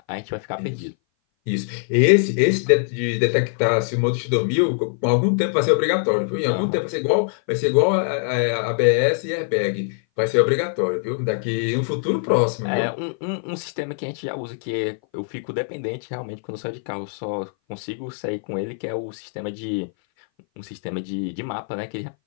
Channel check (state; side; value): silent; right; 59 dB below the other